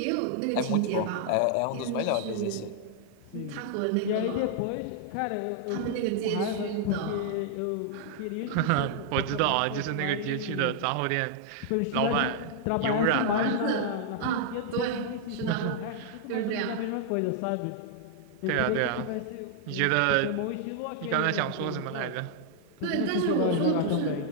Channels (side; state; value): both; different; correlation -0.01